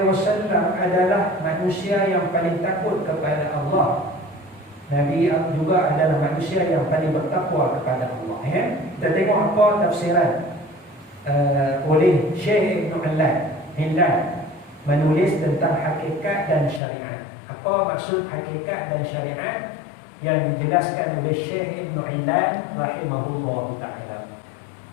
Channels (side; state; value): right; drops out; at 16.8 s